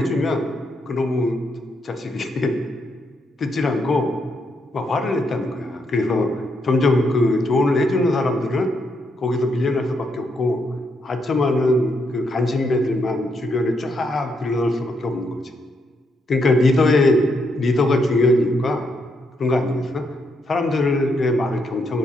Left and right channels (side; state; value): both; normal; correlation 0.78